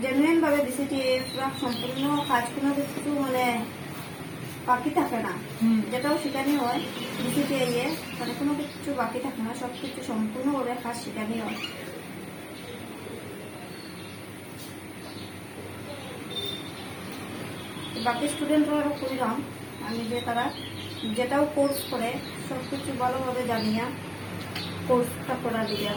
জেনুইন ভাবে ডিসিটিআই পুরো সম্পূর্ণ কাজ কোনো কিছু মানে বাকি থাকে না। যেটাও শেখানি হয় ডিসিটিআই এ মানে কোনো কিছু বাকি থাকে না, সব কিছু সম্পূর্ণভাবে কাজ শেখানি হয়। বাকি স্টুডেন্টরাও করিলাম আমি যে তারা যেটাও কোর্স করে সব কিছু ভালোভাবে জানিয়া কোর্সটা করা দিয়া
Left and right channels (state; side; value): identical; both; correlation 1.00